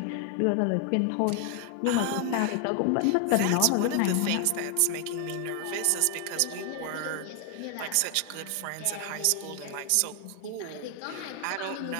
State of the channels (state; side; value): different; both; correlation 0.00